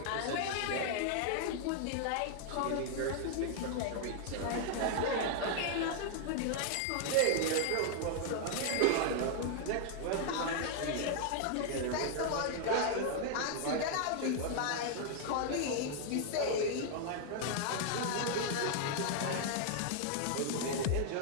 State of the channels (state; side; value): different; both; correlation 0.00